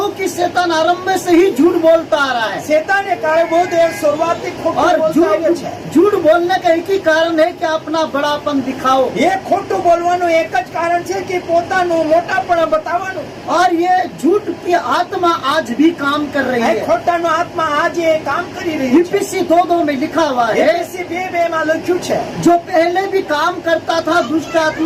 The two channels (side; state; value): both; identical; correlation 1.00